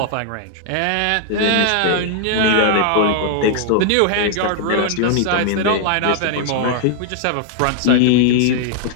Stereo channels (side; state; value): both; different; correlation 0.00